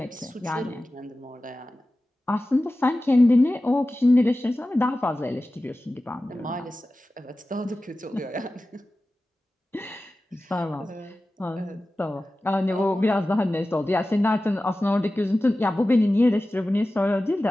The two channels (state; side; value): normal; both; correlation 0.95